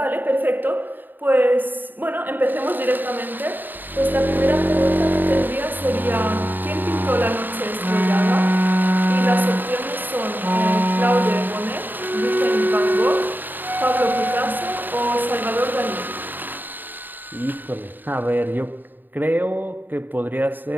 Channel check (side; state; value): left; late; 0.090 ms